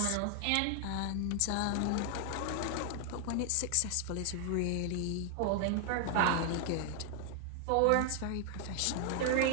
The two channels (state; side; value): different; both; correlation 0.00